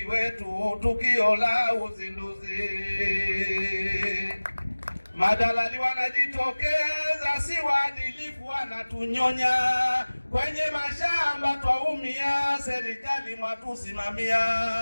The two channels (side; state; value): both; inverted; correlation -1.00